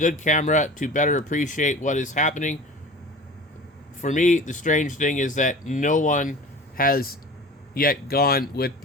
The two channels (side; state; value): both; normal; correlation 0.38